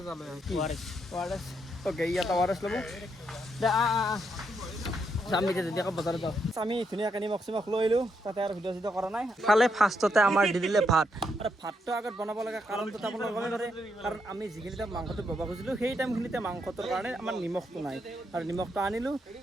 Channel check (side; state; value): both; normal; correlation 0.79